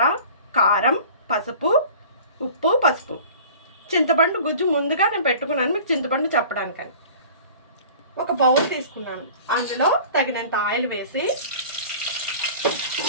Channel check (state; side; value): inverted; both; correlation -0.43